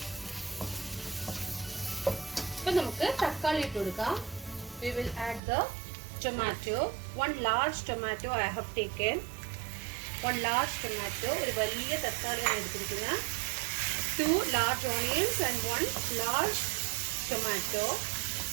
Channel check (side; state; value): left; drops out; at 5.4 s